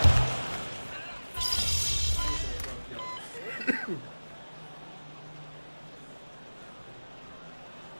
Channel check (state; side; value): inverted; both; correlation -1.00